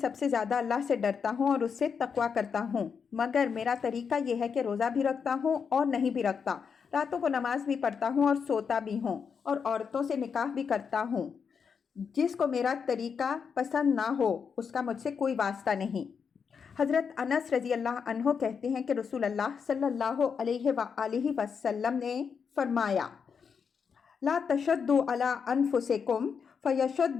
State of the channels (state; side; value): quieter; right; 6.3 dB